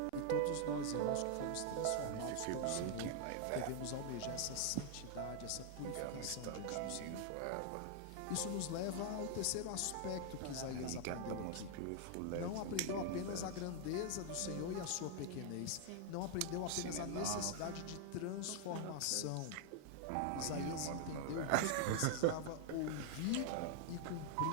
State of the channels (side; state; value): both; different; correlation 0.00